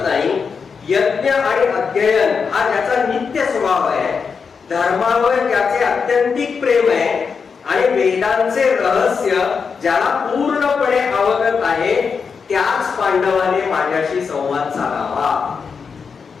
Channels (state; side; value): quieter; right; 5.7 dB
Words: नाही, यज्ञ आणि अध्ययन हा त्याचा नित्य स्वभाव आहे, धर्मावर त्याचे अत्यंतिक प्रेम आहे आणि वेदांचे रहस्य ज्याला पूर्णपणे अवगत आहे त्याच पांडवाने माझ्याशी संवाद साधावा.